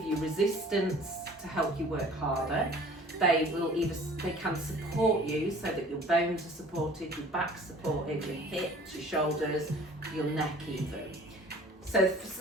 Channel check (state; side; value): normal; both; correlation 0.49